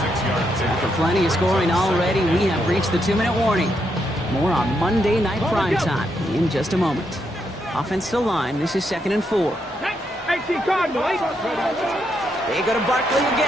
plenty of scoring already, we have reached the 2-minute warning. More on Monday Night Primetime in just a moment. Offensive line, this is 2nd and 4. They go to Barkley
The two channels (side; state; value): both; normal; correlation 0.79